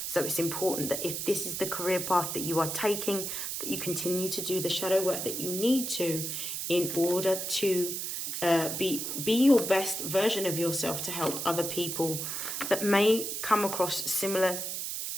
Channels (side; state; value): right; noise; hiss, 3 dB below the sound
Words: So it's important that if this is the career path that you are taking, that you continue to do the shadow work that you need to in order to be your best version of yourself to help other people that may come across similar